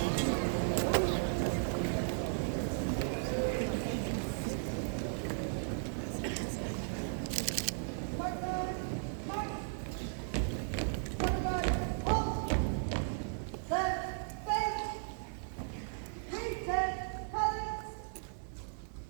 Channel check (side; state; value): left; silent; digital silence